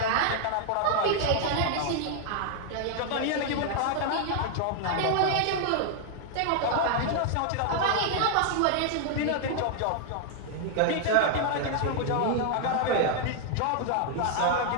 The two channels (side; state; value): both; different; correlation 0.00